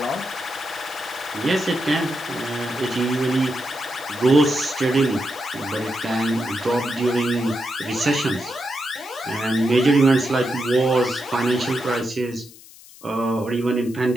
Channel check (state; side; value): noise; left; hiss, 21 dB below the sound